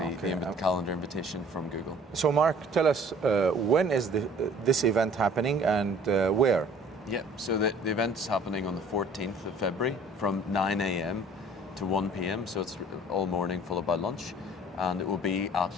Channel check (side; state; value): both; normal; correlation 0.52